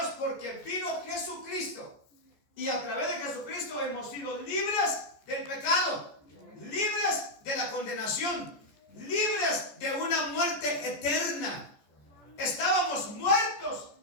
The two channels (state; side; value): late; right; 14 ms